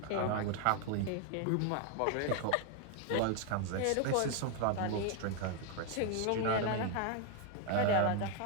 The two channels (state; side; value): different; both; correlation 0.01